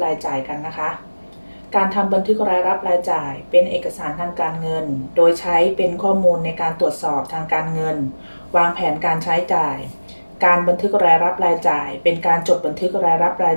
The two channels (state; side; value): inverted; both; correlation -1.00